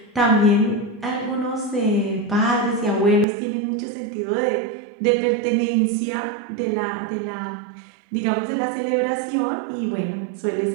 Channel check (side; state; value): left; drops out; at 3.2 s